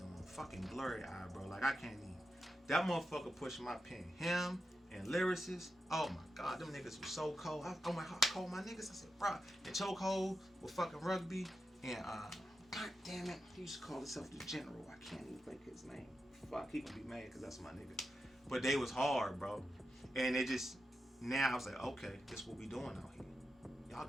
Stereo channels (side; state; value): both; normal; correlation 0.88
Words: Fucking Blurry Eye, bro. Like, I can't even. That motherfucker pushed my pen. Him and lyricists. Oh my God, them niggas were so cold. I called my niggas. I said, bro, the Chokehold with fucking Rugby. And God damn it, he used to call himself the General. I can't even think his name. Fuck, he gonna be mad because that's my nigga. But they was hard, bro. And it just, now I was like, okay, this is what we doing out here. Y'all